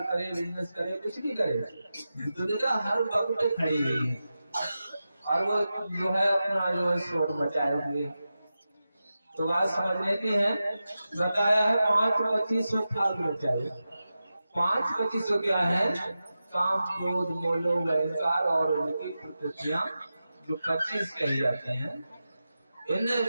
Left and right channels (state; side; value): inverted; both; correlation -0.92